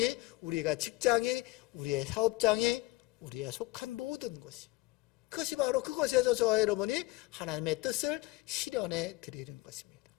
우리가 직장이, 우리의 사업장이, 우리의 속한 모든 곳이, 그것이 바로 그것에서 저와 여러분이 하나님의 뜻을 실현해 드리는 것입니다.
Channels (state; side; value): quieter; right; 20.4 dB